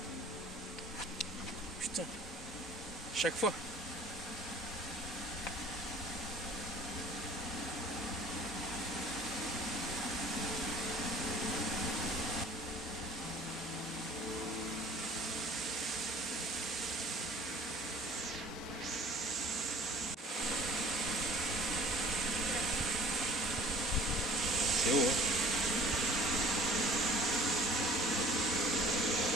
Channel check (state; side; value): normal; both; correlation 0.50